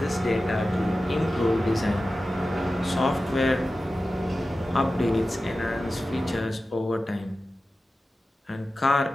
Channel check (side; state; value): both; normal; correlation 0.94